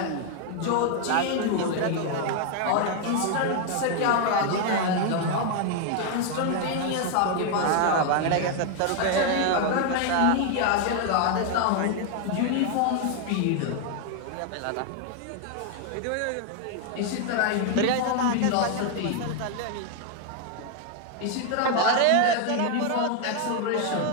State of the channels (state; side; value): different; both; correlation 0.00